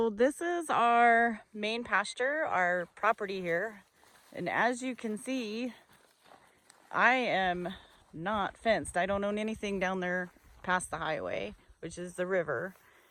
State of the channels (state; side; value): identical; both; correlation 1.00